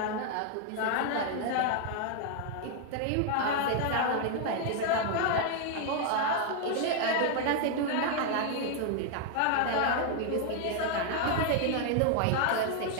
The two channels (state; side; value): different; both; correlation 0.00